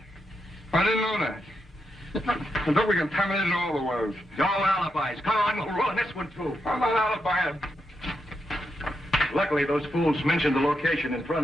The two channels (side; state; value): both; normal; correlation 0.84